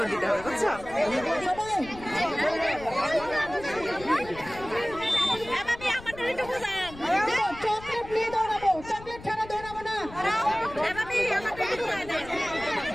দিতে হবে বুঝছো চকলেট নিয়ে দৌড়াবো চকলেট ছাড়া দৌড়াবো না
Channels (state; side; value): noise; left; rumble, 16 dB below the sound